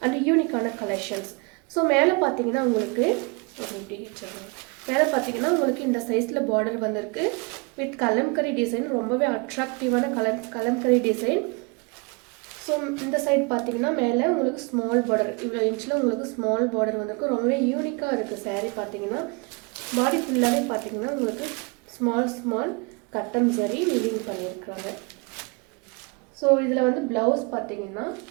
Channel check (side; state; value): left; quieter; 29.6 dB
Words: அண்ட் யூனிக்கான கலெக்ஷன்ஸ். ஸோ மேலே பார்த்தீங்கன்னா உங்களுக்கு இந்த சைஸில் பார்டர் வந்திருக்கு வித் கலம்கரி டிசைன். ரொம்பவே அட்ராக்டிவான கலம்கரி டிசைன். ஸோ இந்த சைட் பார்த்தீங்கன்னா மேலே உங்களுக்கு ஸ்மால் பார்டர், இவ்வளோ இன்ச்சில் உங்களுக்கு ஸ்மால் பார்டர் வந்திருக்கு. ரொம்பவே யூனிக்காக இருக்குது சாரீ. பார்த்தீங்கன்னா பாடி ஃபுல்லாகவே பார்த்தீங்கன்னா உங்களுக்கு ஸ்மால் கட்டம் சரி வீவிங் பண்ணியிருக்காங்க. ஸோ இதில் வந்து ப்ளவுஸ் பார்த்தீங்கன்னா